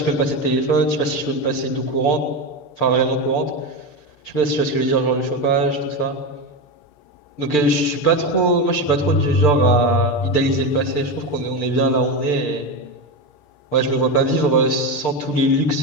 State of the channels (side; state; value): right; late; 6.8 ms